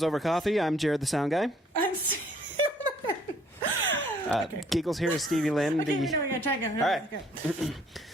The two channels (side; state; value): both; normal; correlation 0.62